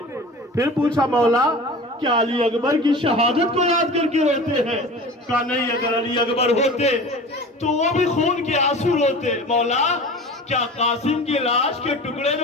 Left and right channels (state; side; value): normal; both; correlation 0.37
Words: پھر پوچھا مولا کیا علی اکبر کی شہادت کو یاد کر کے روتے ہیں؟ کہا نہیں، اگر علی اکبر ہوتے تو وہ بھی خون کے آنسو روتے. مولا کیا قاسم کی لاش کے ٹکڑے